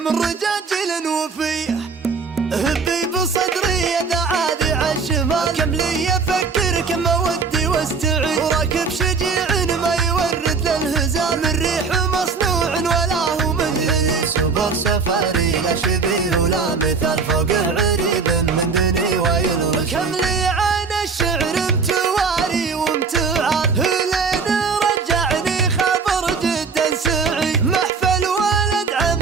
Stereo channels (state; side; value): quieter; left; 5.0 dB